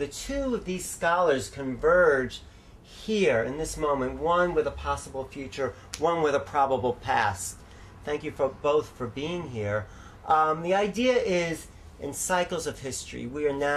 two of these scholars converge here in this moment, one with a possible future, one with a probable past. Thank you for both for being here. The idea is, in cycles of history, we are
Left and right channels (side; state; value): both; identical; correlation 1.00